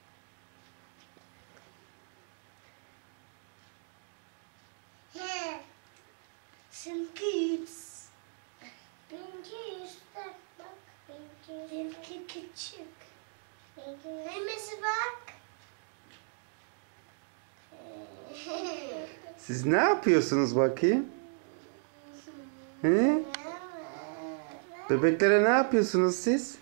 seninki yüz. Benimki yüzde. Bak. Benimki küçük. Neyimiz bak. Siz ne yapıyorsunuz bakayım? He? Bebeklere ne yapıyorsunuz siz?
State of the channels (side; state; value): left; silent; digital silence